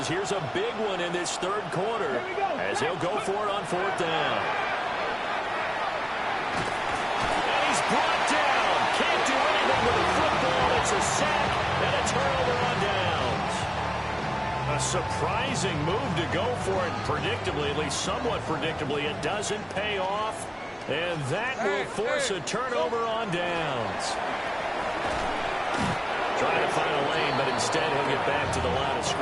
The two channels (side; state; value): both; identical; correlation 1.00